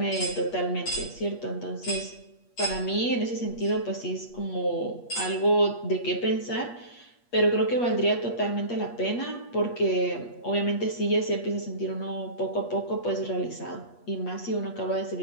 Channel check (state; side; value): late; right; 8.4 ms